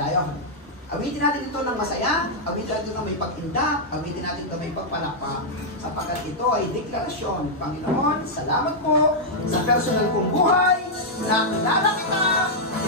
Awitin natin ito ng masaya, awitin natin ito ng may pag-indak, awitin natin ito may pagpalakpak, sapagkat ito ay deklarasyon. Panginoon, salamat po sa personal kong buhay, na kilala kita,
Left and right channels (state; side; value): normal; both; correlation -0.06